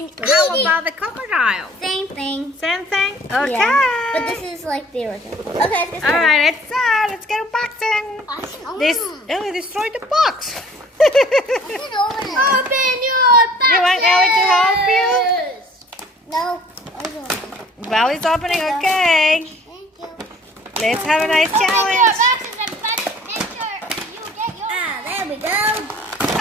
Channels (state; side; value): normal; both; correlation 0.52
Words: How eat it. about the crocodile? Same thing. Same thing? Okay. Yeah. But this is like the original. Okay, let's get started. Alright, let's get unboxing. This Ellie destroyed the box. Open your boxes. You want Ellie to help you? No. Well, it's opening, okay. Thank you. Let's have a nice challenge. There we go.